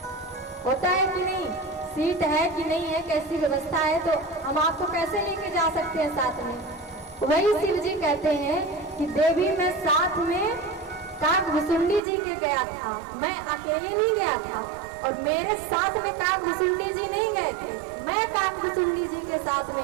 होता है कि नहीं, सीट है कि नहीं है, कैसी व्यवस्था है, तो हम आपको कैसे लेके जा सकते हैं साथ में। वही शिव जी कहते हैं कि देवी मैं साथ में काकभुसुंडी जी के गया था, मैं अकेले नहीं गया था, और मेरे साथ में काकभुसुंडी जी नहीं गए थे, मैं काकभुसुंडी जी के साथ में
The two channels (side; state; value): left; drops out; at 12.0 s